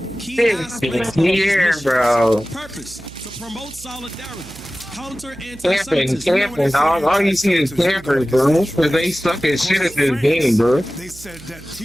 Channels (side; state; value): right; noise; hum, 19 dB below the sound